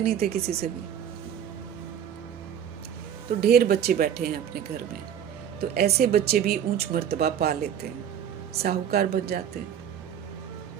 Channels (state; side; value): quieter; left; 9.2 dB